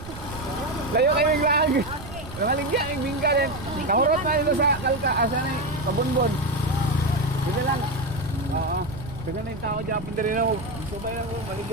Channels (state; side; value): noise; right; rumble, 13 dB below the sound